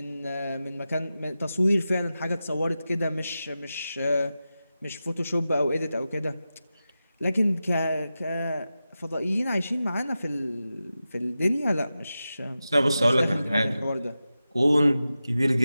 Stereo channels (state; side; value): inverted; both; correlation -0.93